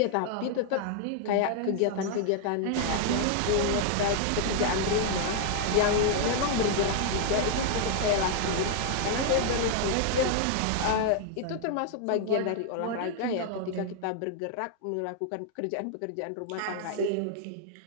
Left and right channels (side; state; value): both; different; correlation 0.00